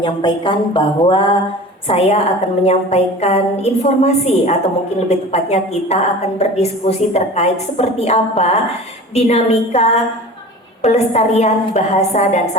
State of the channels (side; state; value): both; normal; correlation 0.38